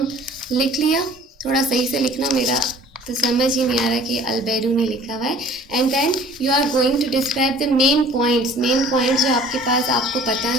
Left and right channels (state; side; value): normal; both; correlation 0.50